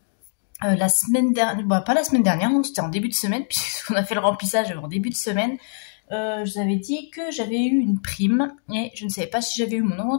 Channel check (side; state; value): right; silent; digital silence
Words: la semaine dernière, pas la semaine dernière, c'était en début de semaine puisqu'on a fait le remplissage en début de semaine. Je vous avais dit que j'avais eu une prime et je ne savais pas si j'avais eu mon